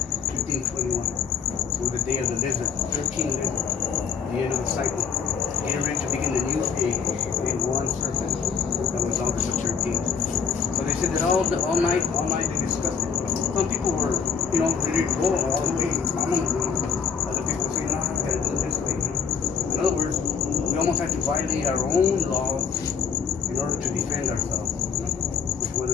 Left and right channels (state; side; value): quieter; right; 6.4 dB